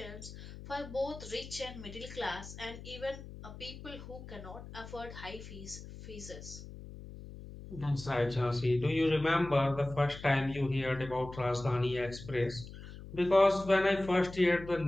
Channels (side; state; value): left; noise; hum, 13 dB below the sound